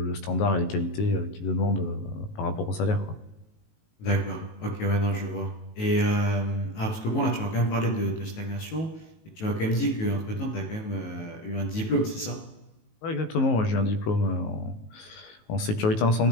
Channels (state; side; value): late; right; 19 ms